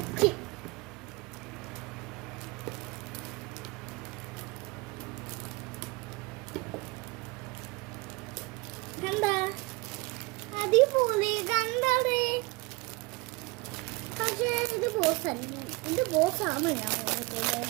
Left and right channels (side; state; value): left; quieter; 25.1 dB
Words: കണ്ട അടിപൊളി കണ്ടേ. പക്ഷേ ഇത് ബോസല്ല, ഇത് ബോസാണ് ഞാൻ ഓർത്തത്.